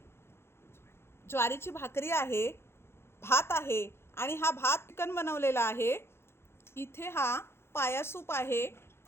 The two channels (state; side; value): late; right; 0.12 ms